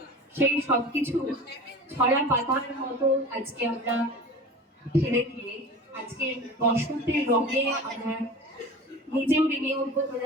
সেই সবকিছু ছড়া পাতার মতো আজকে আমরা ফেলে দিয়ে আজকে বসন্তের রঙে আমরা নিজেও রেঙে উঠবো।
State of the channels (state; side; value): normal; both; correlation 0.36